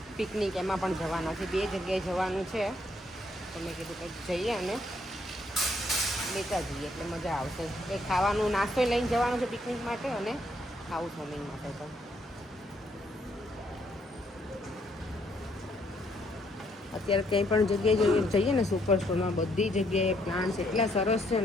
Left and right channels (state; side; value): normal; both; correlation 0.71